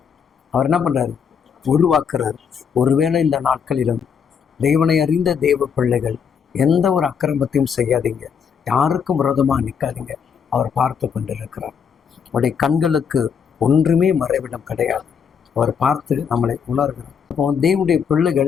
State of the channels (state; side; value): quieter; right; 7.0 dB